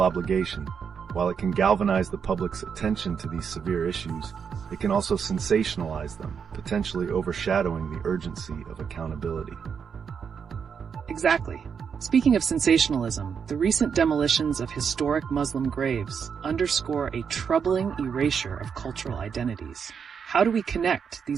obligation. While it can galvanize the public's attention to these severe issues, it can also sensationalize them, potentially overshadowing the urgency of accountability. Exactly. Speaking of sensationalism, the recent demolitions of historic Muslim graves underscore a troubling erasure of cultural identities. How do we connect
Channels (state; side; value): quieter; left; 6.7 dB